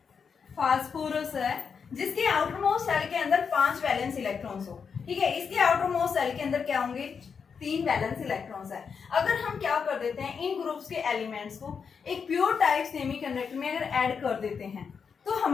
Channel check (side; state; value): right; quieter; 6.1 dB